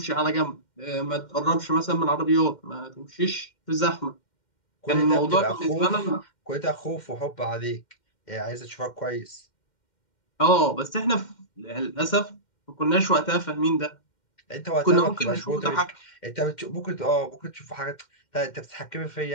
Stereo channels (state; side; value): late; right; 2.1 ms